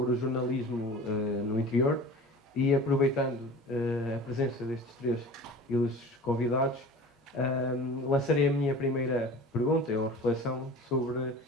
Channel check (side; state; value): both; normal; correlation 0.39